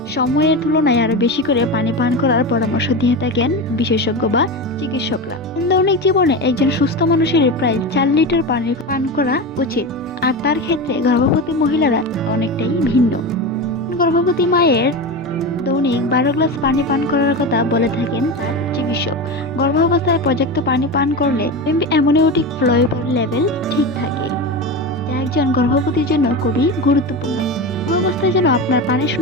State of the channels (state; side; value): normal; both; correlation 0.22